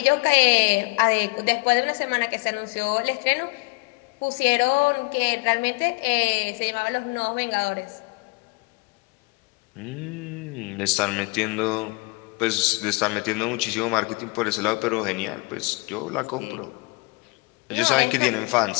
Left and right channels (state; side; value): quieter; right; 28.5 dB